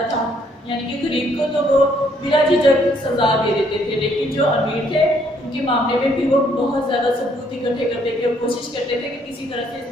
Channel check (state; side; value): normal; both; correlation 0.67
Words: था। यानी कि गरीब को तो वो बिना झिझक सजा दे देते थे, लेकिन जो अमीर थे उनके मामले में भी वो बहुत ज़्यादा सबूत इकट्ठे करते थे और कोशिश करते थे कि किसी तरह से